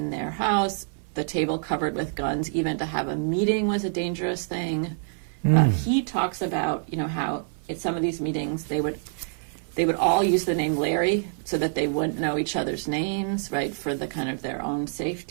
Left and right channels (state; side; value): silent; left; 56 dB below the other